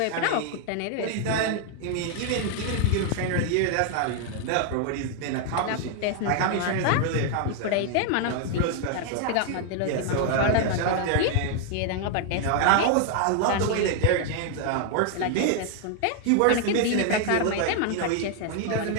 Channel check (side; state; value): both; different; correlation 0.00